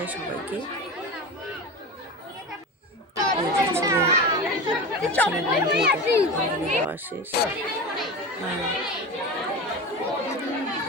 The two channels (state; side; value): normal; both; correlation 0.27